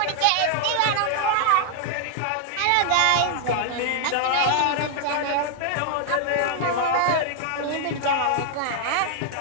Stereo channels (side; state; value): both; different; correlation 0.00